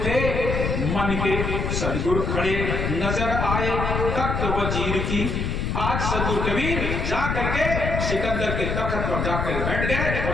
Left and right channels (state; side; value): noise; left; rumble, 1 dB below the sound